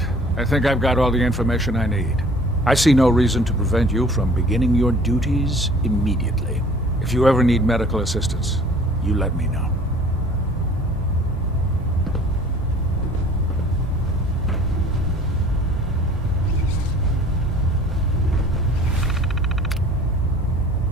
I think I've got all the information I need. I see no reason to prevent you from beginning your duties immediately. If you ever need medical assistance, you let me know.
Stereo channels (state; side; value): normal; both; correlation 0.50